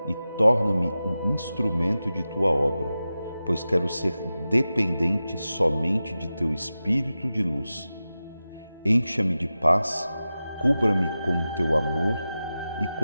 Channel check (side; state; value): both; inverted; correlation -0.94